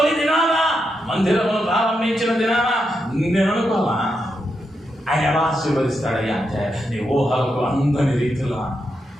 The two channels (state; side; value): normal; both; correlation 0.84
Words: దినాన మందిరమును ప్రారంభించిన దినాన నేను అనుకోవాలా ఆయన ఎలా ఆశీర్వదిస్తాడయ్యా అంటే నీ ఊహలకు అందని రీతిలో.